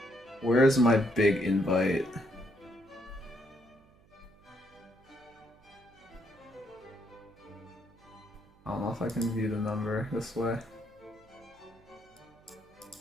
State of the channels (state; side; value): noise; right; hum, 29 dB below the sound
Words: Where's my big invite? I don't know if I can view the number this way.